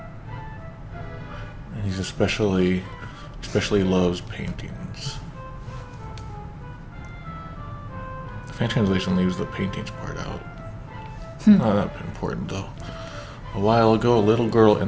And he's especially loves paintings. The fan translation leaves the paintings part out. Not that important though. A while ago, a little girl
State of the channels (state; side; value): identical; both; correlation 1.00